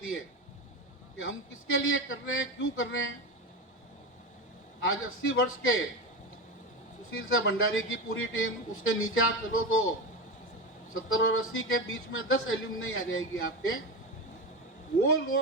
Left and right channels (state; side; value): normal; both; correlation 0.20